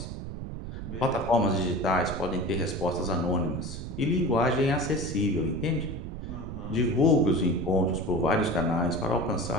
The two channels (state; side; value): noise; right; rumble, 8 dB below the sound